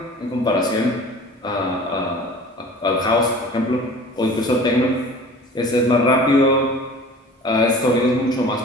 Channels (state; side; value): normal; both; correlation 0.43